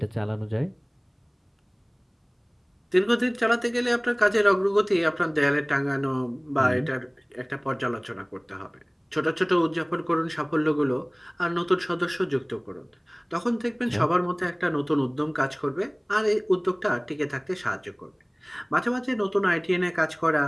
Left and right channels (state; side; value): identical; both; correlation 1.00